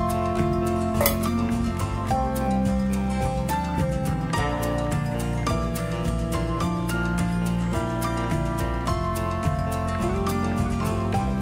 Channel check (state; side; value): identical; both; correlation 1.00